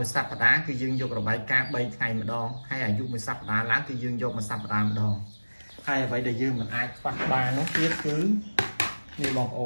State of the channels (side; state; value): both; inverted; correlation -1.00